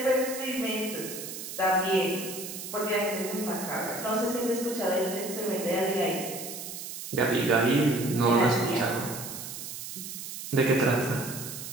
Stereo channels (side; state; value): right; noise; hiss, 9 dB below the sound